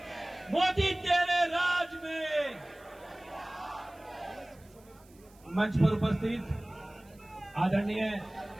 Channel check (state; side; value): noise; right; hiss, 28 dB below the sound